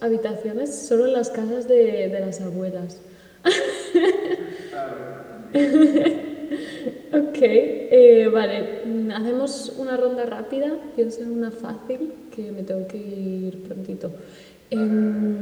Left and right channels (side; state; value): both; identical; correlation 1.00